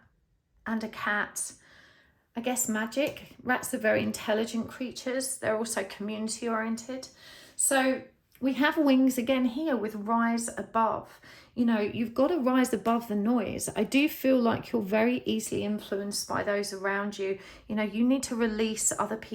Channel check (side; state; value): both; identical; correlation 1.00